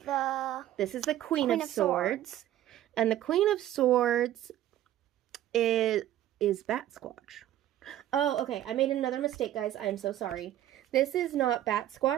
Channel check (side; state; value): left; quieter; 12.8 dB